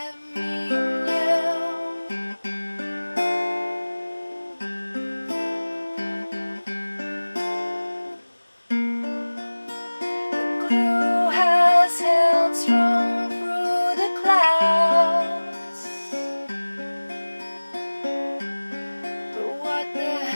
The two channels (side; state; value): both; inverted; correlation -1.00